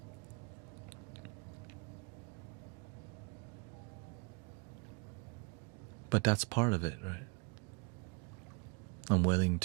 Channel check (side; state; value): left; quieter; 31.7 dB